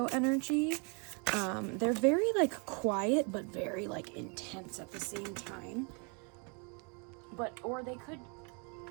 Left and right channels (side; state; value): left; quieter; 35.2 dB